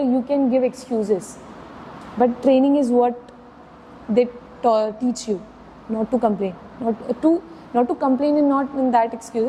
can give excuses. But training is what they teach you, not to complain. Not to complain and not in that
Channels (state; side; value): identical; both; correlation 1.00